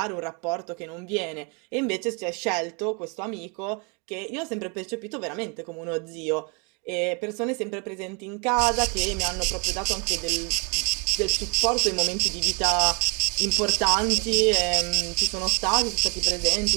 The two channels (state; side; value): quieter; left; 33.7 dB